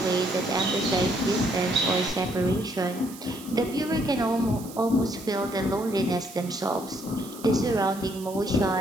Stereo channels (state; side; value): noise; right; hiss, 17 dB below the sound